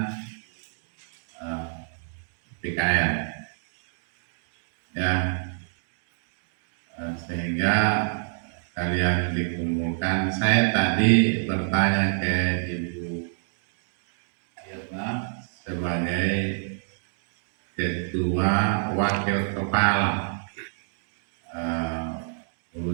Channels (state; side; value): silent; left; digital silence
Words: PKN ya, sehingga kalian dikumpulkan. Saya tadi bertanya ke Ibu Irna sebagai ketua wakil kepala